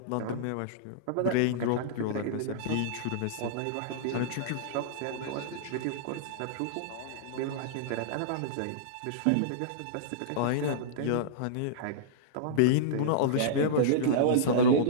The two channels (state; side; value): different; both; correlation -0.03